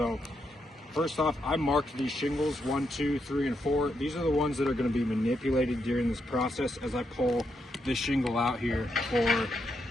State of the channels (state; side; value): normal; both; correlation 0.81